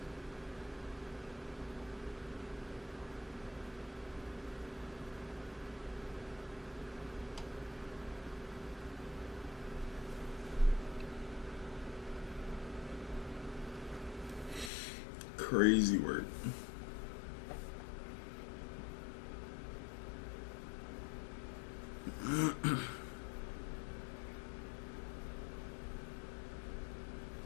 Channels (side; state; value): right; drops out; at 14.7 s